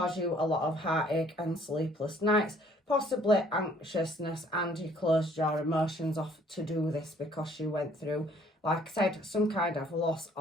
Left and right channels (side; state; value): both; normal; correlation 0.60